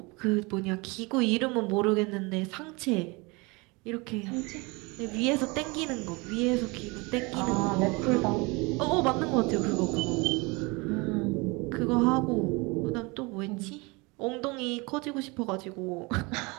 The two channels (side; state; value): left; quieter; 26.5 dB